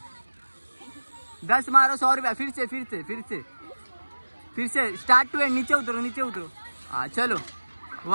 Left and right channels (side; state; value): both; inverted; correlation -1.00